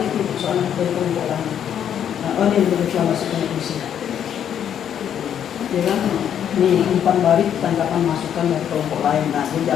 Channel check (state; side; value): quieter; right; 9.3 dB